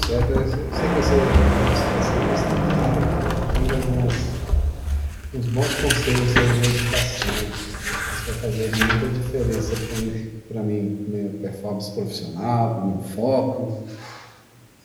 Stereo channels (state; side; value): identical; both; correlation 1.00